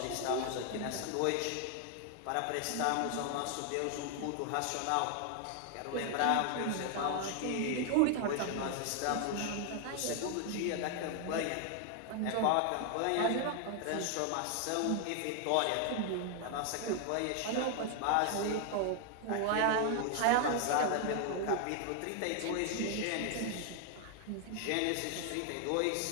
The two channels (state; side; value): different; both; correlation 0.00